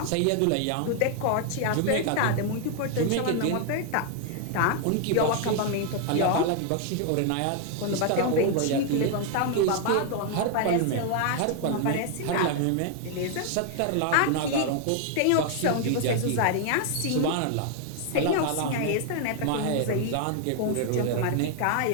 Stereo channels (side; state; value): both; different; correlation 0.00